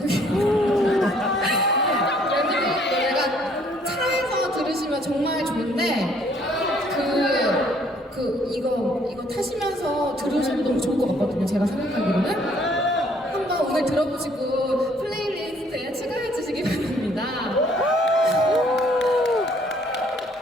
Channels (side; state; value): both; normal; correlation 0.62